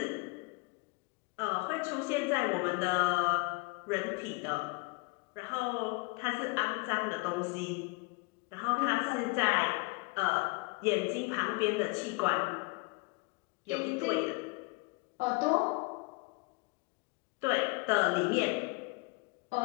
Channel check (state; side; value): quieter; right; 28.2 dB